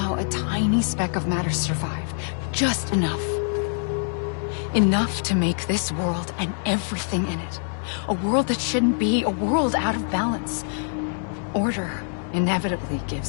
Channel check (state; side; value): silent; right; 62 dB below the other